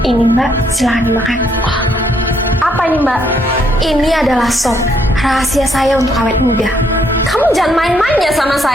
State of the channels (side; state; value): both; normal; correlation 0.72